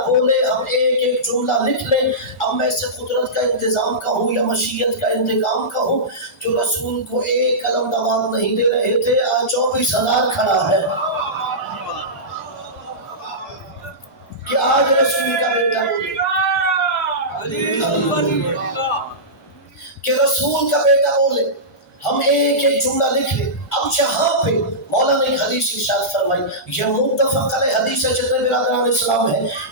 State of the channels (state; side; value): normal; both; correlation -0.17